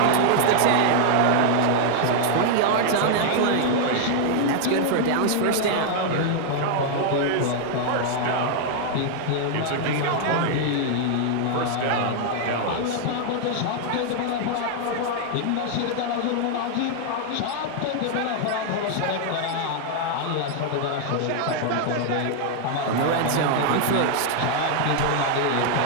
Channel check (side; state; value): both; different; correlation 0.00